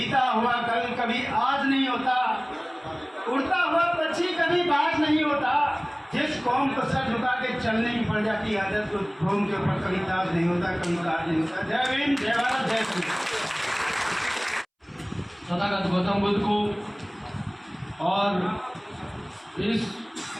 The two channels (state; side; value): identical; both; correlation 1.00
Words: हुआ कल कभी आज नहीं होता, उड़ता हुआ पक्षी कभी बाज नहीं होता। जिस कौम को सर झुका के चलने की पड़ जाती है आदत, तो कौम के ऊपर कभी ताज नहीं होता, कभी ताज नहीं होता। जय भीम, जय भारत, जय श्री। तथागत गौतम बुद्ध को और इस